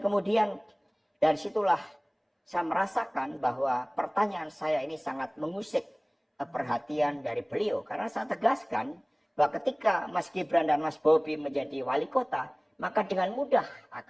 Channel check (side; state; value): both; identical; correlation 1.00